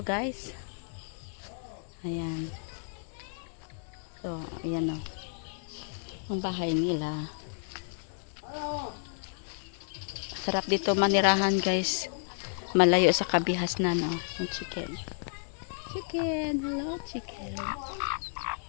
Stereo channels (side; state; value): right; silent; digital silence